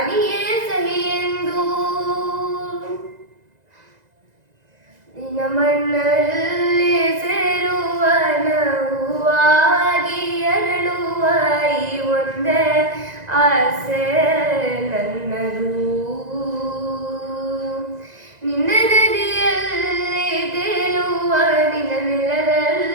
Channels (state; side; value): late; left; 2.0 ms